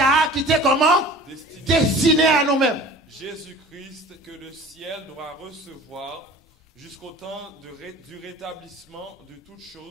qui était comment? Destiné à nous-mêmes. Jésus-Christ que le ciel doit recevoir jusqu'au temps du rétablissement de toutes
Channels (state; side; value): normal; both; correlation 0.43